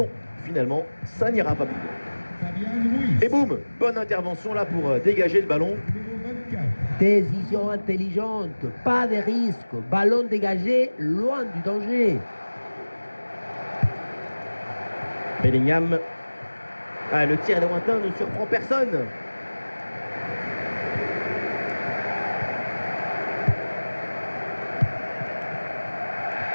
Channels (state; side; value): inverted; both; correlation -1.00